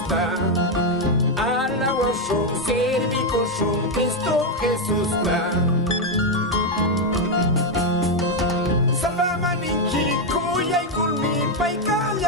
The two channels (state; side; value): normal; both; correlation 0.04